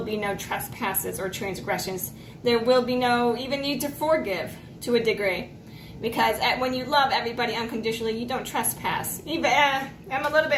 be no trespasses or transgressions. There will be no even need to forgive to a degree. Because when you love everybody unconditionally, you don't trespass. I'm a little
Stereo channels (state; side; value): identical; both; correlation 1.00